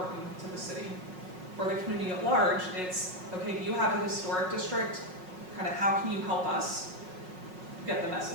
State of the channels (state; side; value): late; left; 5.5 ms